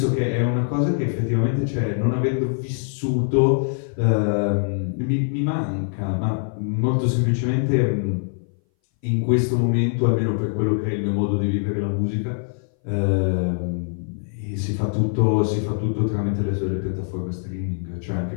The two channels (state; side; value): silent; right; 60 dB below the other